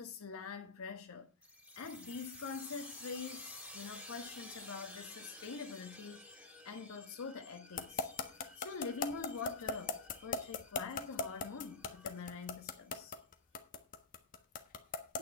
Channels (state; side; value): quieter; right; 4.3 dB